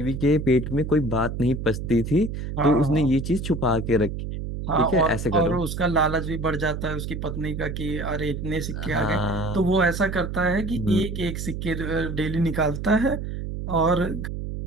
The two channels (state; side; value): noise; right; hum, 5 dB below the sound